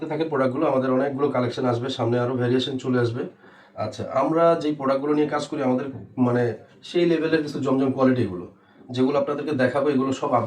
থাকেন প্রোডাক্টগুলো। আমাদের অনেকগুলো কালেকশন আসবে, সামনে আরও ভ্যারিয়েশন চলে আসবে। আচ্ছা, আমরা যেই প্রোডাক্টগুলো নিয়ে কাজ করি আমাদের মানে সেই লেভেলের কিছু জমজম কোয়ালিটিগুলো, যেগুলো আপনাদেরকে দেখাবো এগুলো সব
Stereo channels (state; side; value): identical; both; correlation 1.00